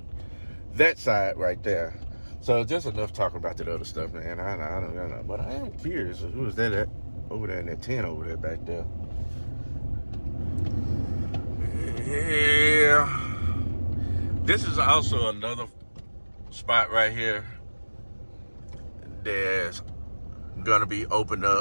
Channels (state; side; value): inverted; both; correlation -1.00